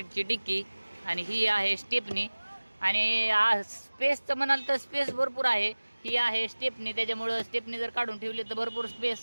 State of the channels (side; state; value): both; inverted; correlation -1.00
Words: डिक्की. आणि ही आहे स्टेपनी. आणि स्पेसचं म्हणाल तर स्पेस भरपूर आहे. ही आहे स्टेपनी, त्याच्यामुळं स्टेपनी जर काढून ठेवली तर भरपूर